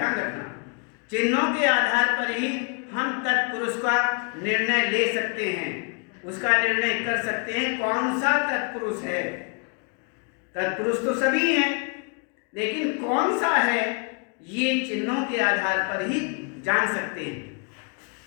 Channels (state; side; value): quieter; right; 38.4 dB